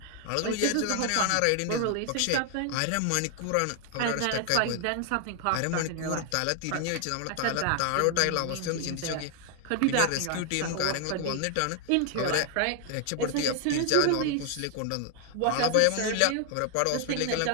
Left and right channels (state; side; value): different; both; correlation 0.00